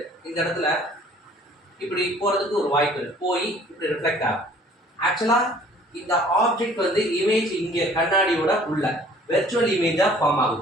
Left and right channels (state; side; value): normal; both; correlation 0.53